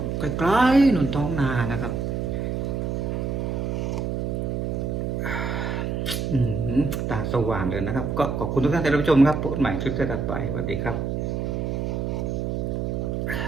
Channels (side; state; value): right; noise; hum, 1 dB below the sound